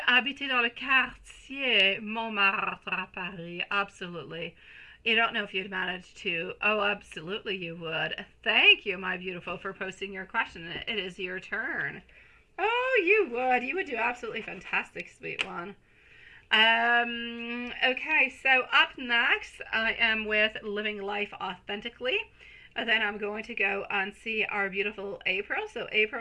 habiter dans le quartier Montmartre à Paris. Absolutely. You don't know if you'd manage to. Oh, absolutely you would. Thank you, my beautiful, for posting your question. It is your turn. Oh, you would. You would do absolutely fantastic, sweet one. Okay, so up next, I am with Living Life Authentically. And then I'm going to go and see our beautiful April. So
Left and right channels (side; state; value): both; identical; correlation 1.00